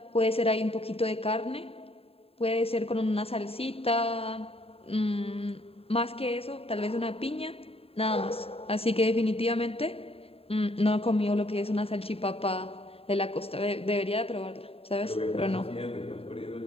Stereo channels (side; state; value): right; late; 0.28 ms